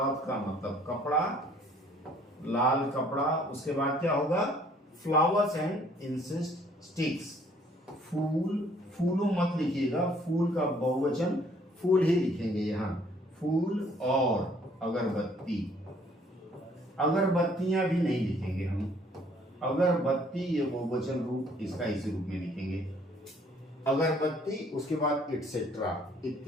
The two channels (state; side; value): normal; both; correlation 0.60